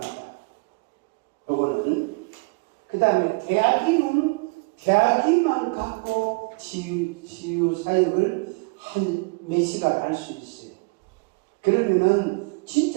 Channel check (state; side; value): quieter; left; 29.0 dB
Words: 요거는. 그 다음에 대학이만 갖고 치유사역을 한 몇 시간 할 수 있어요. 그러면은